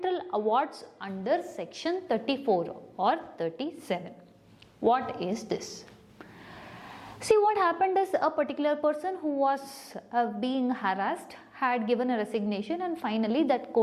awards under section 34 or 37? What is this? See, what happened is, a particular person who was being harassed had given a resignation, and finally that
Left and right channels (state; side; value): identical; both; correlation 1.00